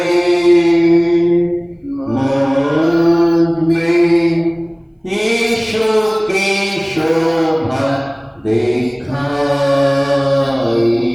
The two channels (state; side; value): identical; both; correlation 1.00